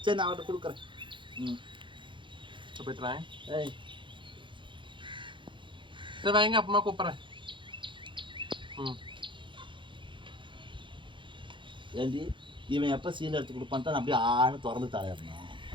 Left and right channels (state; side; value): late; left; 0.23 ms